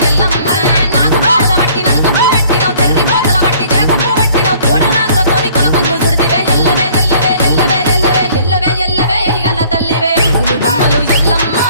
ఎల్లమ్మ నాకు పోల బట్టి నలుకప్పు పెట్టినవు చెర్రి పోతల బట్టి జరకప్పు పెట్టినవు కోడ నాగులతోని కొనకొంగు చుడితివే ఎల్లవే ఎల్లవే ఎల్లవే ఎల్లవే ఎల్లవే ఎల్లవే ఈగల్ల తల్లివే గులు బొమ్మలు ఎల్లమ్మ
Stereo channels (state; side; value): inverted; both; correlation -0.55